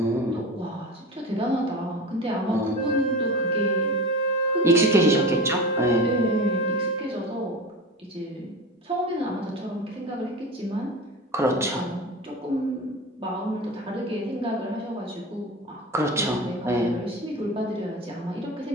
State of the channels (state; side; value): normal; both; correlation 0.30